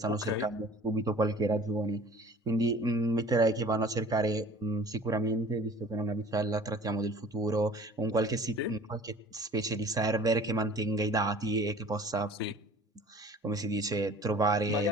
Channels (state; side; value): normal; both; correlation 0.47